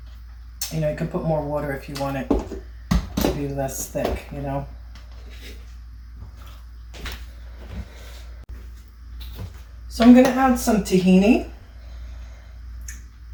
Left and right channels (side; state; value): both; identical; correlation 1.00